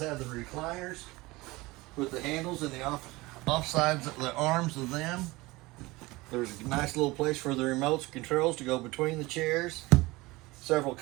the recliners with the handles and the off sides, the arms of them. There's a nice little place for the remote controls to go between the chairs. Several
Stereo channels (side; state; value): left; quieter; 21.4 dB